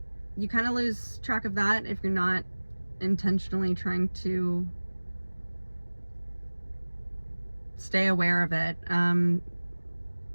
you kind of lose track of that if you're not intentionally trying to stay aware of it.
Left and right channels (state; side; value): inverted; both; correlation -1.00